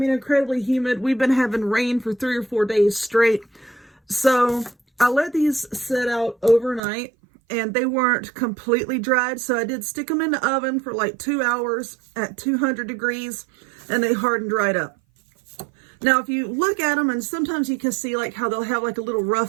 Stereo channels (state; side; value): drops out; left; at 6.8 s